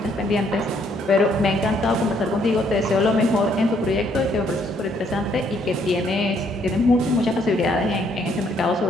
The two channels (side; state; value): both; normal; correlation 0.69